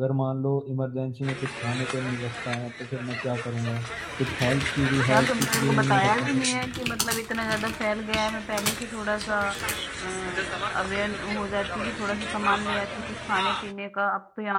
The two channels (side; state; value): both; identical; correlation 1.00